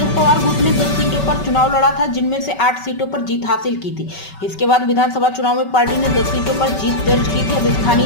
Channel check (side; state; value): right; late; 5.3 ms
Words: पवार गुट ने 10 सीटों पर चुनाव लड़ा था, जिनमें से 8 सीटों पर जीत हासिल की थी। इसके बाद विधानसभा चुनाव में पार्टी ने 10 सीटों पर जीत दर्ज की थी। अब स्थानीय